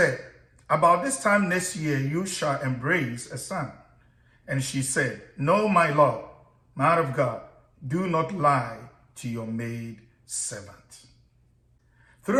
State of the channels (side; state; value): both; identical; correlation 1.00